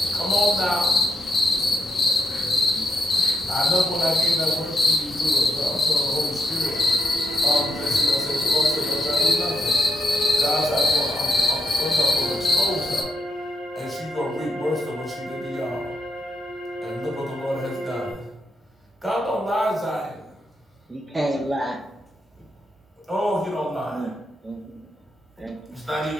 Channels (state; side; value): normal; both; correlation 0.81